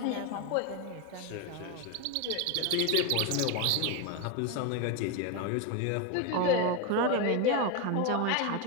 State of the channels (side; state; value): both; different; correlation 0.02